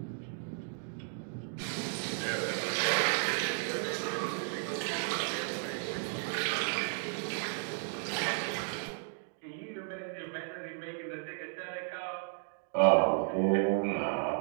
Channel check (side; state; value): left; silent; 55 dB below the other